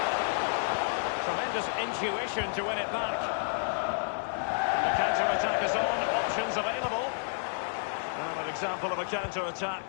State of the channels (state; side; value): silent; right; digital silence